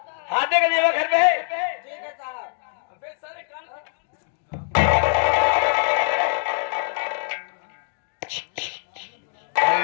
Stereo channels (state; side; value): silent; right; digital silence